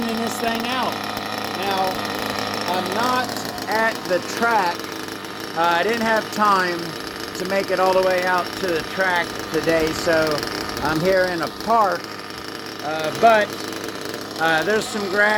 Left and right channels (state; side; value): identical; both; correlation 1.00